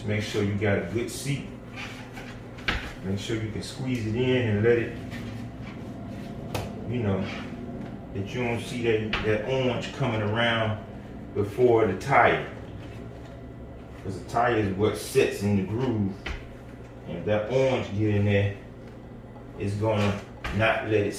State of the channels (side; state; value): both; identical; correlation 1.00